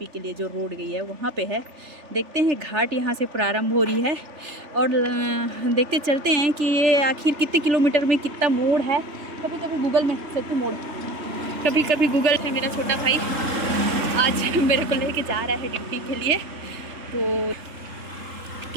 के लिए जो रोड गई है वहाँ पे है। देखते हैं घाट यहाँ से प्रारंभ हो रही है और देखते चलते हैं कि ये आखिर कितने किलोमीटर में कितना मोड़ है। कभी कभी गूगल में सत्तू मोड़, कभी कभी गूगल है। मेरा छोटा भाई आज मेरे को लेके जा रहा है ड्यूटी के लिए, तो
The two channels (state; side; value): late; left; 3.4 ms